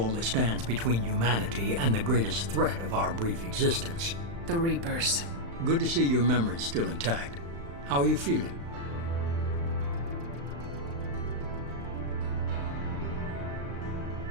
that stands between humanity and the greatest threat of our brief existence. The Reapers. Good to see your memory's still intact. How are you feeling?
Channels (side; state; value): left; late; 35 ms